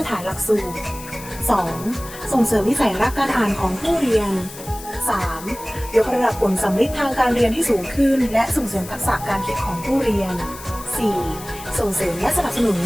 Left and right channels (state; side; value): noise; left; hiss, 15 dB below the sound